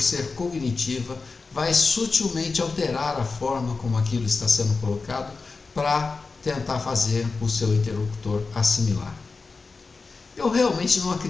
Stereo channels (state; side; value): quieter; right; 4.2 dB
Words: cognitiva, vai sutilmente alterar a forma como aquilo está sendo colocado para tentar fazer o seu interlocutor assimilar. Eu realmente não